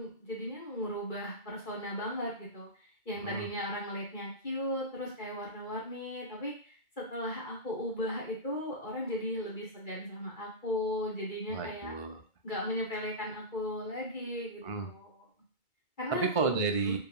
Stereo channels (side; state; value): right; late; 2.2 ms